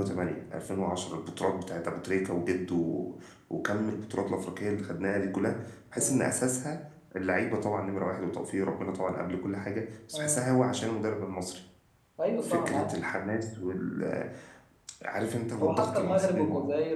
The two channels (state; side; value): identical; both; correlation 1.00